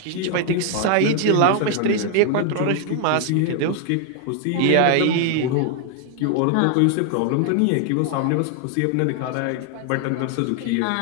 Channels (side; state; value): both; different; correlation 0.00